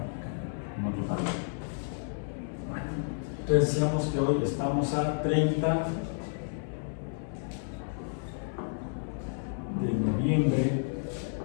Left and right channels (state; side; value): silent; right; 57 dB below the other